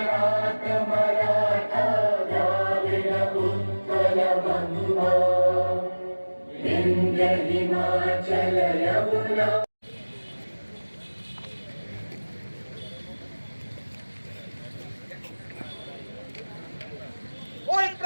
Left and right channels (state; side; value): inverted; both; correlation -1.00